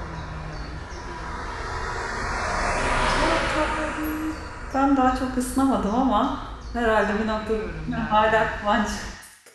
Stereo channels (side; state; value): both; identical; correlation 1.00